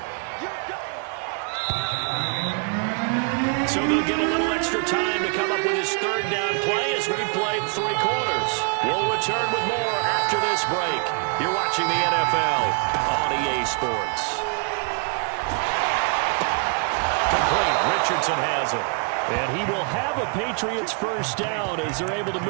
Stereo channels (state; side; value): quieter; left; 37.9 dB